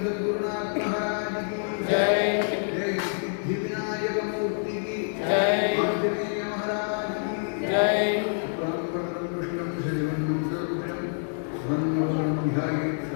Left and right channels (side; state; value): right; silent; digital silence